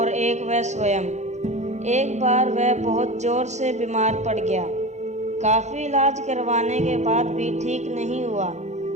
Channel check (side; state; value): left; late; 0.33 ms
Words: एक वह स्वयं। एक बार वह बहुत जोर से बीमार पड़ गया। काफ़ी इलाज करवाने के बाद भी ठीक नहीं हुआ